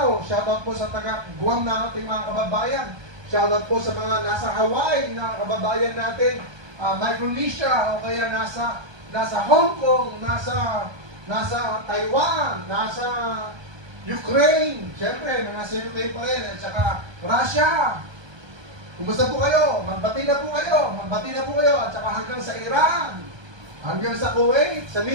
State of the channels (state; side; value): late; left; 1.2 ms